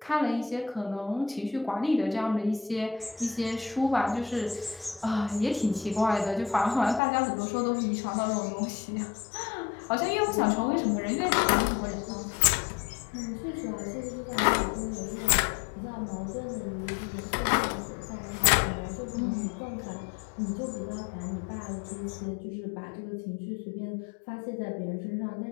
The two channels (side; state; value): right; drops out; at 7.0 s